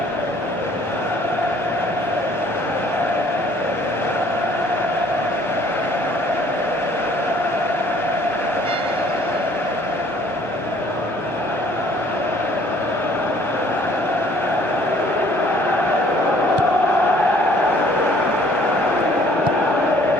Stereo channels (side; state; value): right; late; 1.2 ms